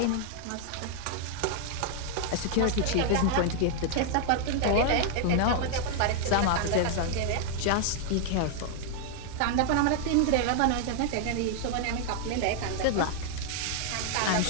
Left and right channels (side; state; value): both; different; correlation 0.00